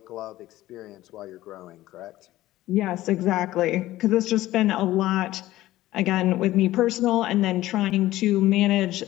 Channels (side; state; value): right; quieter; 15.9 dB